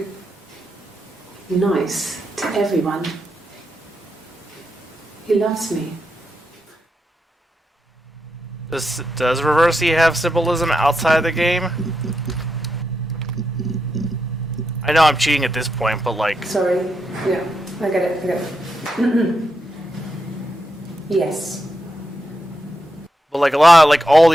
nice to everyone. He loves me. Does Reversi have symbolism outside the game? I know I'm cheating at this point, but like... Sorry. Yeah, I get it. I get it. Yes. But like a lot of, like, all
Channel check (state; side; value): normal; both; correlation 0.85